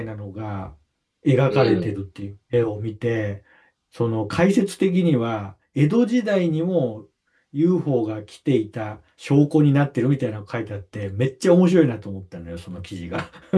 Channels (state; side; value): identical; both; correlation 1.00